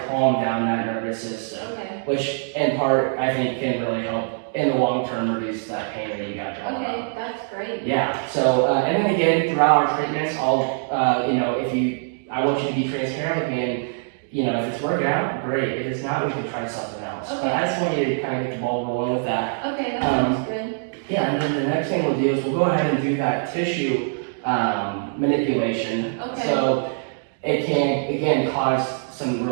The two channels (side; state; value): left; silent; digital silence